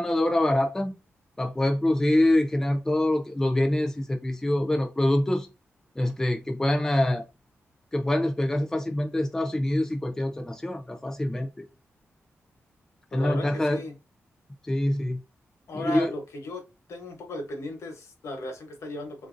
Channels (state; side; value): normal; both; correlation 0.97